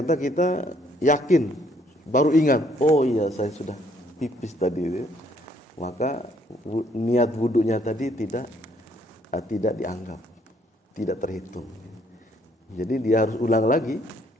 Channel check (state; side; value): normal; both; correlation 0.66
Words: kita yakin, baru ingat, oh iya saya sudah pipis tadi. Maka niat wudunya tadi tidak dianggap, tidak terhitung. Jadi dia harus ulang lagi